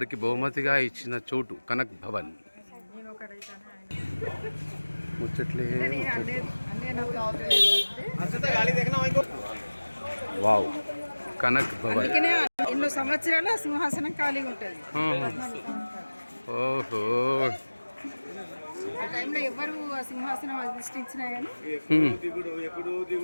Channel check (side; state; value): both; inverted; correlation -1.00